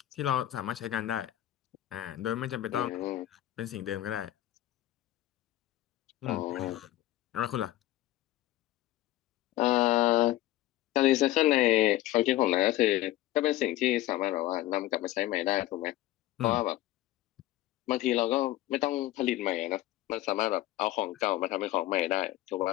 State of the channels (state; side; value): quieter; right; 15.3 dB